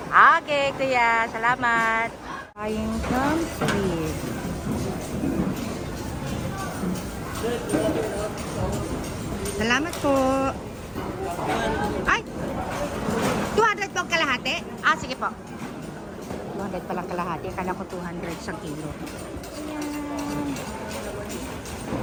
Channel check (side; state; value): both; identical; correlation 1.00